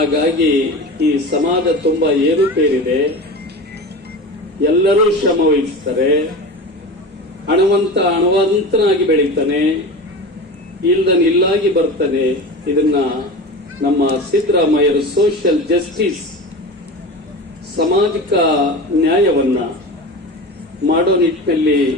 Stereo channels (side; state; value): both; normal; correlation 0.30